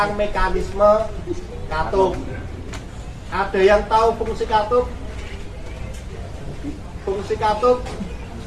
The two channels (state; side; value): identical; both; correlation 1.00